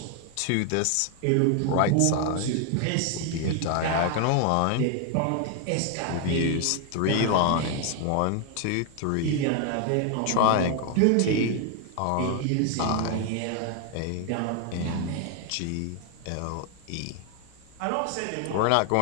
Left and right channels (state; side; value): different; both; correlation 0.00